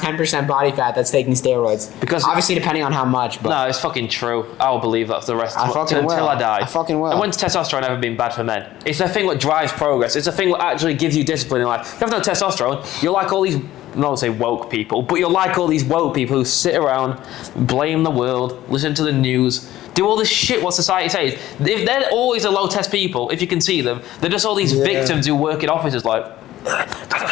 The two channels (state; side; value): quieter; right; 14.5 dB